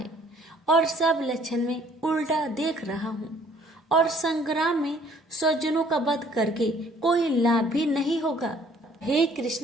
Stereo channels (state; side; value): normal; both; correlation 0.59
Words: और सब लक्षण में उल्टा देख रहा हूँ और संग्राम में स्वजनों का वध करके कोई लाभ भी नहीं होगा। हे